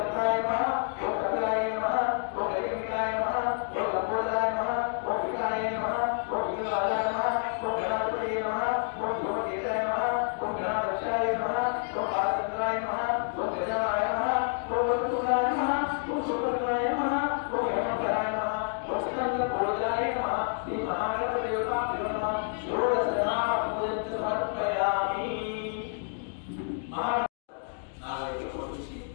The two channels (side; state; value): right; silent; 59 dB below the other